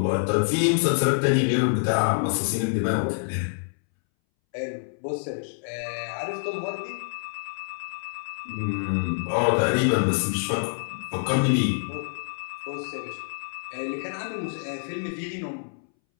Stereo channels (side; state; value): right; silent; 60 dB below the other